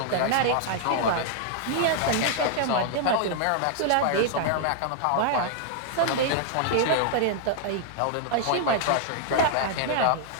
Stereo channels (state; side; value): different; both; correlation -0.01